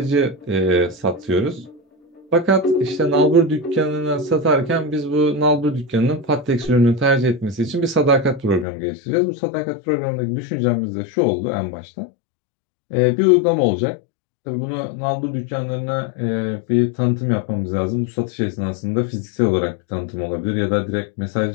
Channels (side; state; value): right; drops out; at 8.7 s